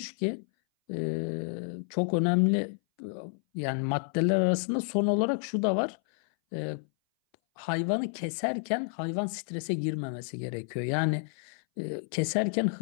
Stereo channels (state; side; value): silent; right; 58 dB below the other